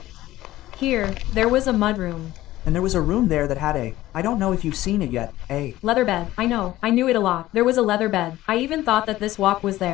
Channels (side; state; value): right; quieter; 15.7 dB